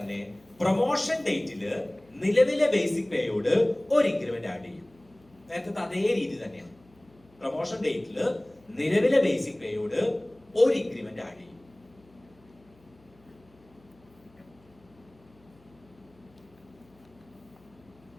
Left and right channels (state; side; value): noise; left; hum, 29 dB below the sound